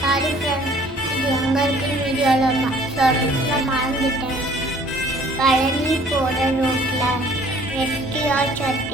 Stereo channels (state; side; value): normal; both; correlation 0.55